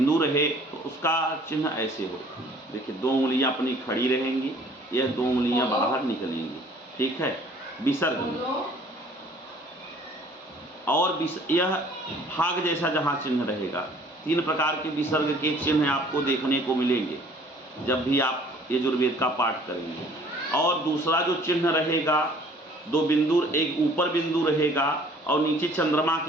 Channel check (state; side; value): normal; both; correlation 0.54